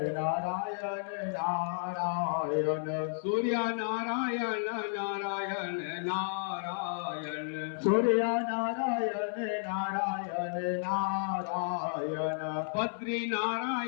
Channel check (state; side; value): silent; right; 56 dB below the other